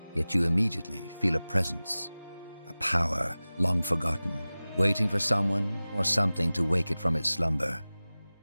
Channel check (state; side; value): inverted; both; correlation -0.98